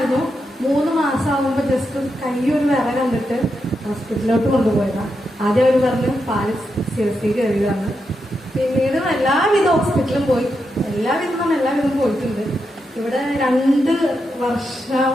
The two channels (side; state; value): both; normal; correlation 0.85